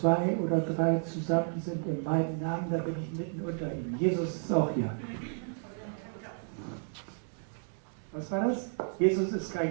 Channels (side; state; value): left; silent; 56 dB below the other